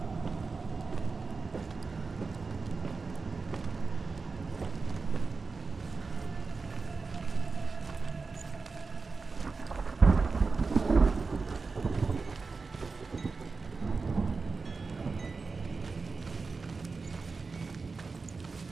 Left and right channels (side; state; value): left; quieter; 4.3 dB